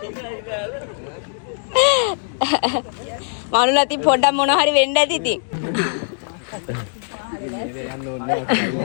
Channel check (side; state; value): right; silent; digital silence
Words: මනුල අති පොඩ්ඩක් මොන හරි වෙන්න ඇති ඉතින්.